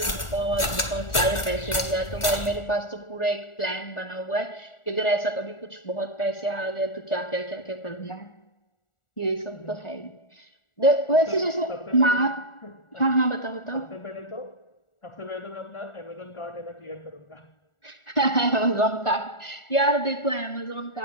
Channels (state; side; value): late; right; 1.4 ms